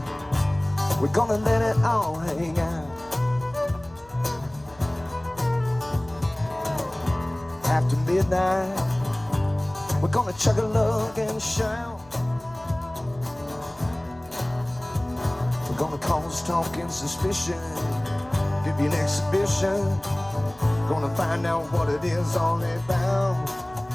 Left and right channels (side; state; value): left; noise; hum, 25 dB below the sound